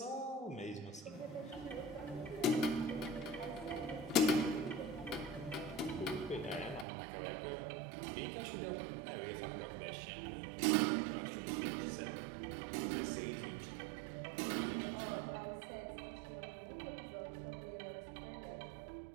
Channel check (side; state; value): left; drops out; at 6.9 s